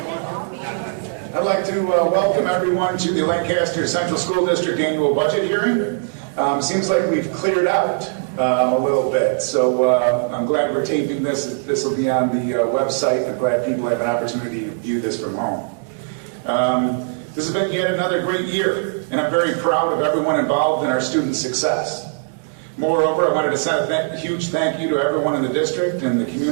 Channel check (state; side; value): silent; left; digital silence